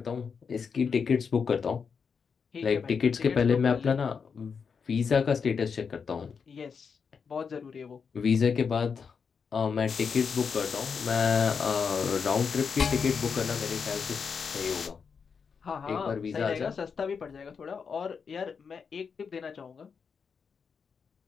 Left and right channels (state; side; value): quieter; right; 6.0 dB